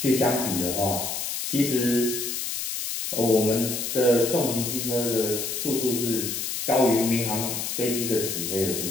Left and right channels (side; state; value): left; noise; hiss, 3 dB below the sound